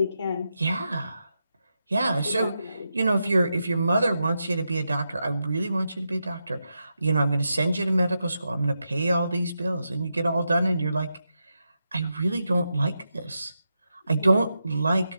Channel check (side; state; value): both; inverted; correlation -0.86